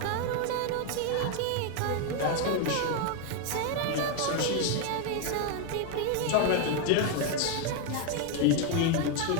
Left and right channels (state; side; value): different; both; correlation 0.01